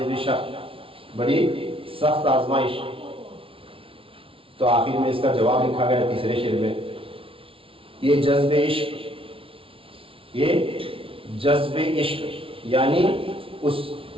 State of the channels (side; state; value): left; late; 0.26 ms